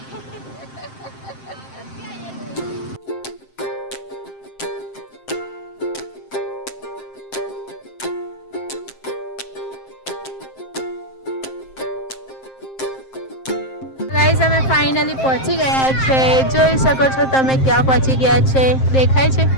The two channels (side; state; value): right; late; 7.6 ms